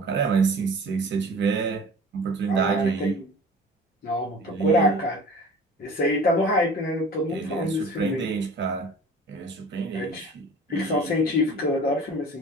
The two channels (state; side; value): normal; both; correlation 0.42